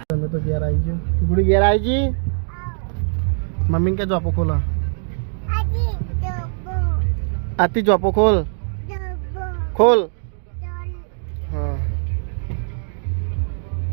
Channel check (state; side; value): silent; left; digital silence